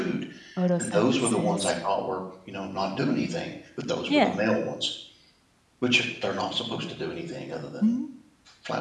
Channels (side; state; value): both; identical; correlation 1.00